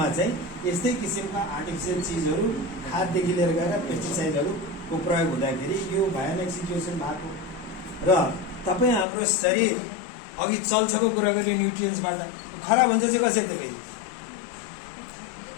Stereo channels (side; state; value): right; drops out; at 9.1 s